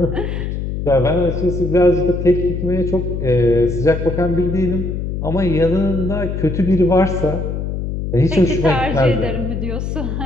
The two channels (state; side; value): noise; left; hum, 4 dB below the sound